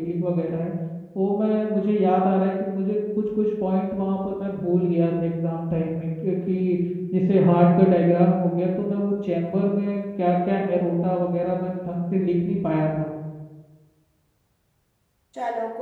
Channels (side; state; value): both; identical; correlation 1.00